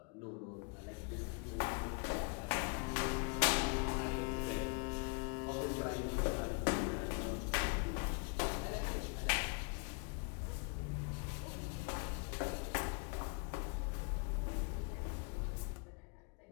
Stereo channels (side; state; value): right; quieter; 34.5 dB